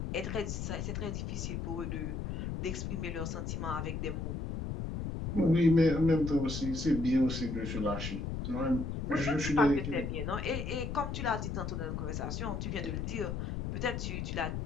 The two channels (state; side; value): noise; left; rumble, 3 dB below the sound